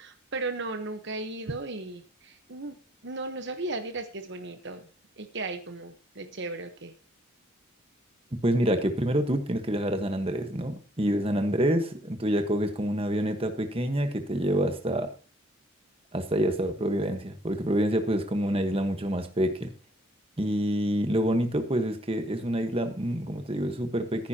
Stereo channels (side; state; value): both; normal; correlation 0.66